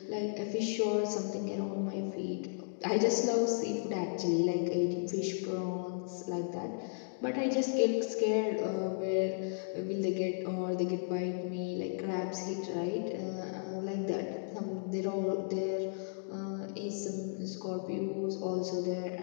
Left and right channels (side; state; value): right; silent; digital silence